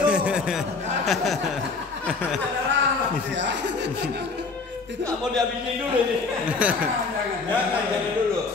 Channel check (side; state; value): right; quieter; 4.3 dB